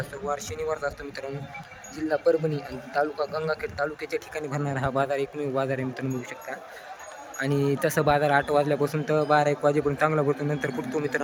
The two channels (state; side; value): identical; both; correlation 1.00